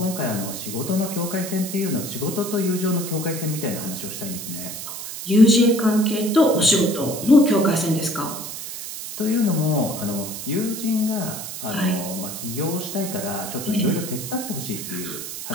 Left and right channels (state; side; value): noise; right; hiss, 8 dB below the sound